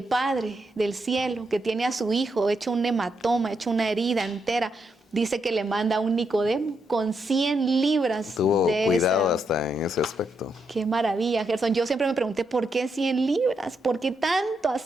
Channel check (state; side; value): normal; both; correlation 0.80